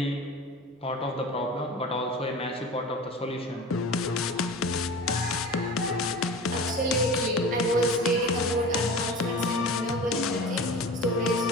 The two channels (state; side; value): normal; both; correlation 0.35